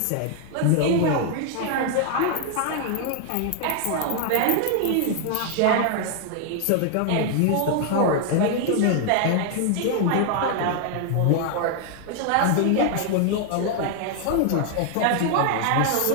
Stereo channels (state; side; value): different; both; correlation 0.00